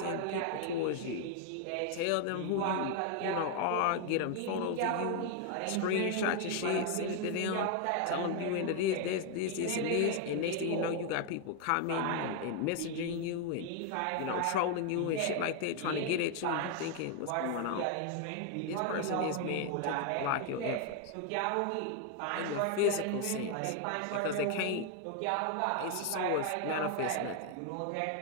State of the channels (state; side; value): different; both; correlation 0.01